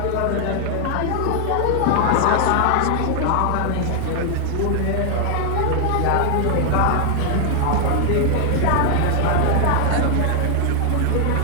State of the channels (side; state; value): both; different; correlation 0.00